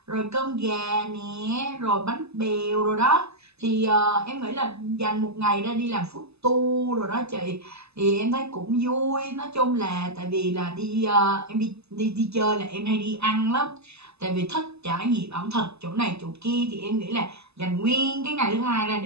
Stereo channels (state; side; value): late; left; 0.79 ms